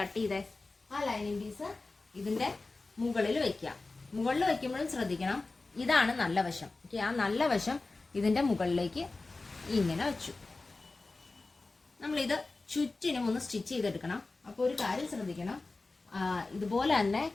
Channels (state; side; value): quieter; right; 3.5 dB